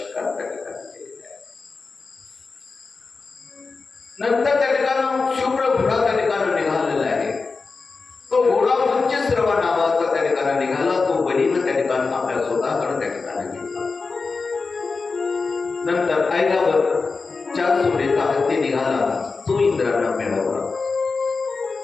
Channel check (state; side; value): quieter; right; 4.3 dB